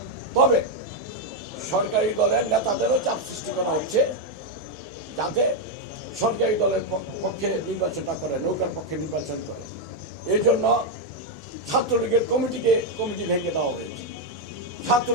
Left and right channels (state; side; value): normal; both; correlation 0.02